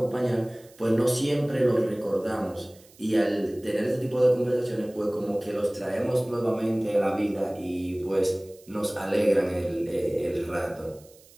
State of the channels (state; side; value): noise; right; hiss, 26 dB below the sound